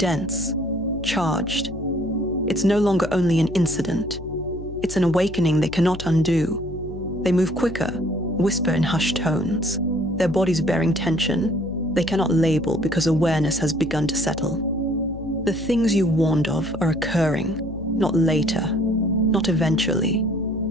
charged. It's no longer only an incident. It's an awakening they cannot undo. They move quicker, whisper in hushed tones, their bodies bearing tension they cannot label because awareness has begun to settle. The things you warned of are occurring, not later, not eventually.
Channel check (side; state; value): left; noise; hum, 13 dB below the sound